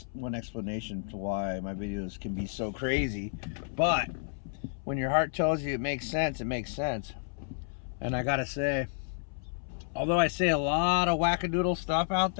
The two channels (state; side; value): silent; right; 57 dB below the other